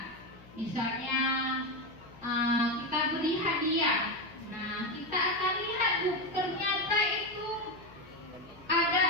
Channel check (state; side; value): noise; left; hum, 22 dB below the sound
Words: Misalnya kita beri hadiah. Nah, kita akan lihat ternyata itu ada